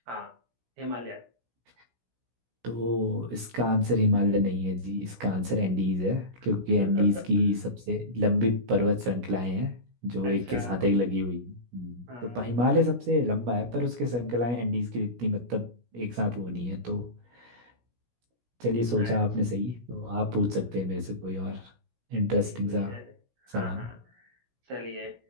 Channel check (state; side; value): late; left; 17 ms